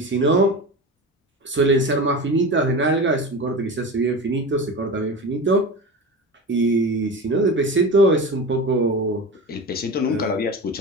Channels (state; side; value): normal; both; correlation 0.28